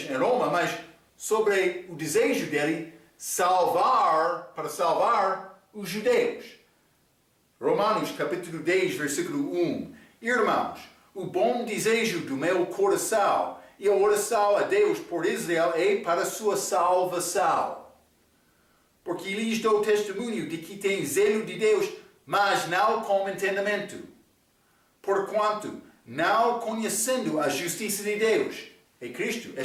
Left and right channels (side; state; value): both; identical; correlation 1.00